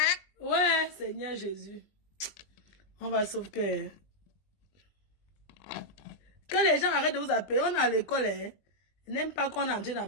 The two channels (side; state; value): right; late; 20 ms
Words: Ouais, Seigneur Jésus. On va sauver. Que les gens arrêtent de vous appeler. On est à l'école, hein. Ils n'aiment pas qu'on est en train